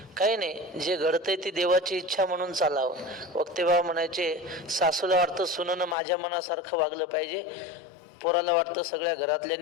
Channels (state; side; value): drops out; right; at 6.0 s